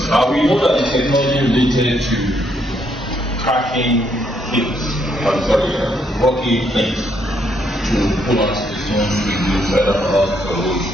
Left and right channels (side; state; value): both; normal; correlation 0.73